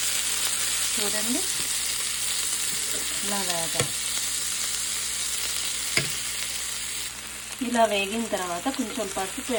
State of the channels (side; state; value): both; identical; correlation 1.00